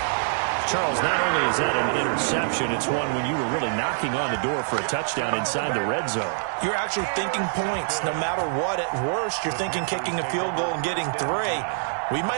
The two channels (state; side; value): silent; left; digital silence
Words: Charles, not only is that an interception, it's one when you were really knocking on the door for a touchdown inside the red zone. You're actually thinking points. No matter what, at worst, you're thinking kicking a field goal and getting 3. We